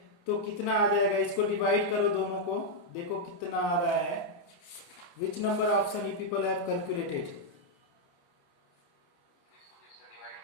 तो कितना आ जाएगा, इसको डिवाइड करो दोनों को, देखो कितना आ रहा है। Which number option you people have calculated?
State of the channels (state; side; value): late; right; 29 ms